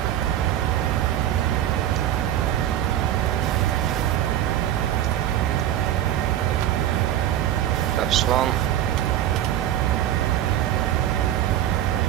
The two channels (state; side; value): quieter; left; 11.8 dB